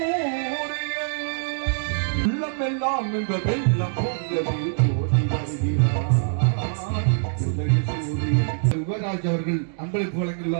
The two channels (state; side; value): silent; left; digital silence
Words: உள்ளமெல்லாம் இந்த வெள்ளம் யுவராஜ் அவர்கள் அன்பளிப்பு